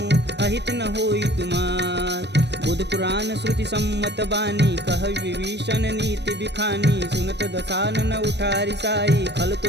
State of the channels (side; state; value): left; late; 0.50 ms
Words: अहित न होई तुमार। बुध पुराण श्रुति सम्मत बानी, कह विभीषण नीति बिखानी। सुनत दसानन उठारी साई, खल